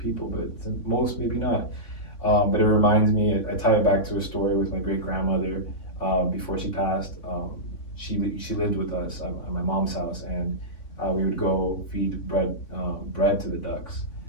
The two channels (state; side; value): late; right; 3.5 ms